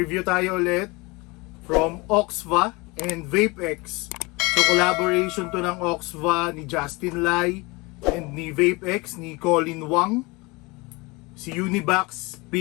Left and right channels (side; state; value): right; quieter; 25.2 dB